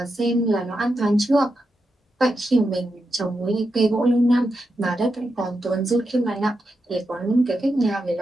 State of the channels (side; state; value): both; normal; correlation 0.87